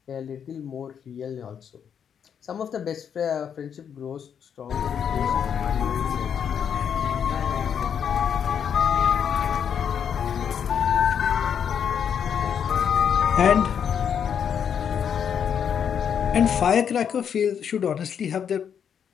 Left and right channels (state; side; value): quieter; right; 7.9 dB